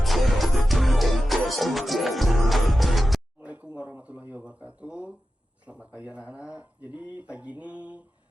Assalamualaikum warahmatullahi wabarakatuh. Selamat pagi anak-anak. Jadi pagi ini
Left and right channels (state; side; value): normal; both; correlation 0.92